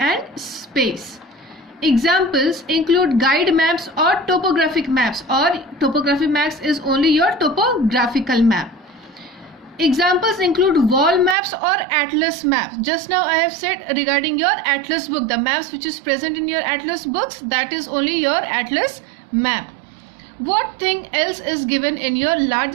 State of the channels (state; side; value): drops out; left; at 11.4 s